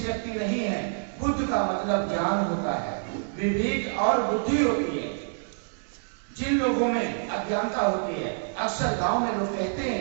व्यक्ति नहीं है, बुद्ध का मतलब ज्ञान होता है, विवेक और बुद्धि होती है। जिन लोगों में अज्ञानता होती है, अक्सर गांव में लोग कहते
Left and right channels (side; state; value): left; silent; digital silence